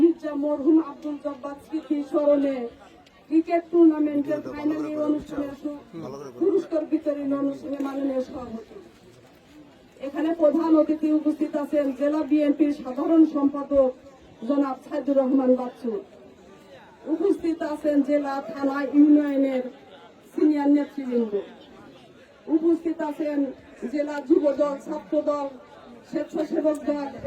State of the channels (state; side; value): identical; both; correlation 1.00